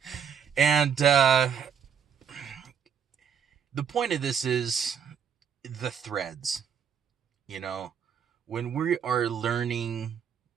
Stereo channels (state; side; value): quieter; left; 7.8 dB